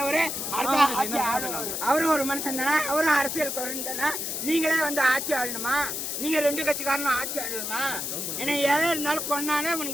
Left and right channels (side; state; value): left; noise; hiss, 3 dB below the sound